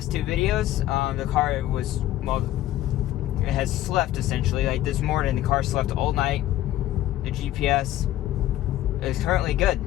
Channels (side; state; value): right; quieter; 14.0 dB